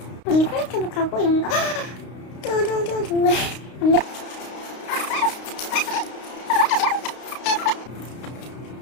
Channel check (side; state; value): right; late; 32 ms